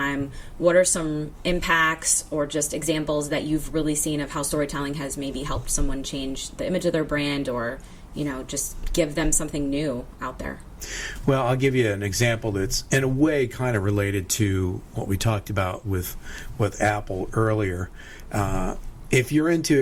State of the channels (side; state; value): both; identical; correlation 1.00